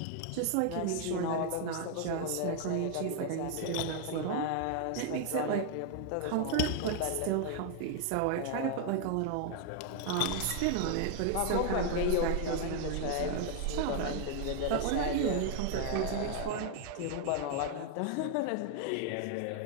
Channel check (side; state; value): both; different; correlation 0.00